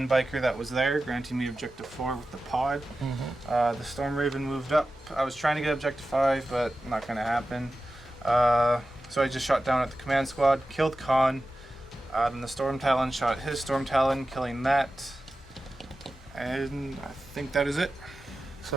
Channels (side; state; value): both; normal; correlation 0.94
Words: biker that was there, granting me objective 4 with the pod. The Storm Raven moved up. I was trying to get objective 5, but not going to happen. So I just shot down at the command squad, killed Khan. Then the Storm Talon shot his Storm Talon, killing that. And I think that is it.